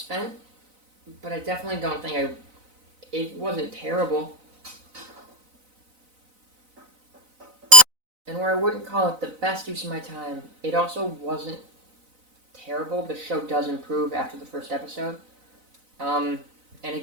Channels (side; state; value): left; late; 4.0 ms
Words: but I definitely don't think it wasn't terrible. And where I wouldn't call it the best use of my time, it also wasn't terrible. The show does improve after the first episode. And